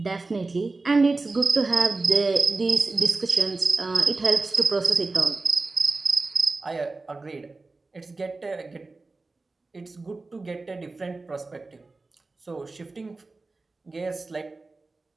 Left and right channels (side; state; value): left; quieter; 3.5 dB